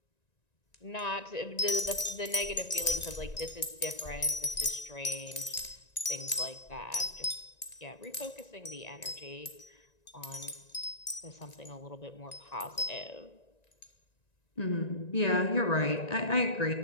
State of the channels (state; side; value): late; right; 1.9 ms